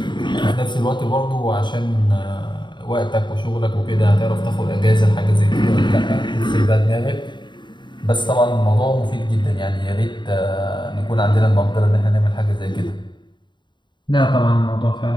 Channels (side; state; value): right; late; 0.22 ms